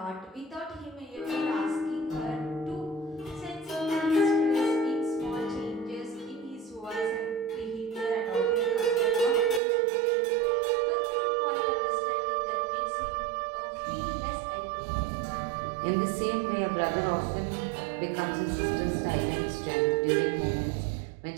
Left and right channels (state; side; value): drops out; left; at 9.6 s